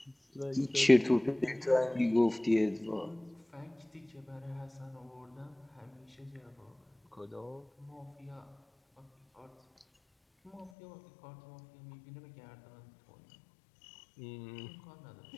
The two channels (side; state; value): right; drops out; at 10.7 s